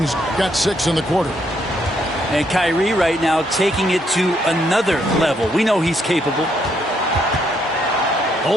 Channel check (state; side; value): normal; both; correlation 0.73